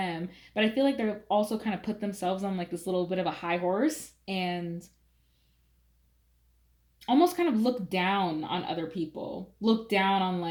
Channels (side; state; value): both; identical; correlation 1.00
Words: But I feel like they're also kind of put themselves on like this little bit of a high horse and almost kind of look down on other people, look down on